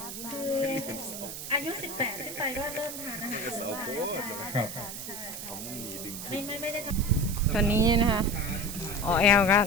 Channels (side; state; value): right; noise; hiss, 8 dB below the sound